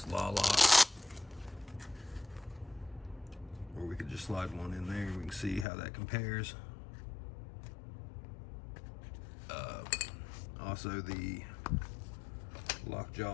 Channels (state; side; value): drops out; right; at 5.7 s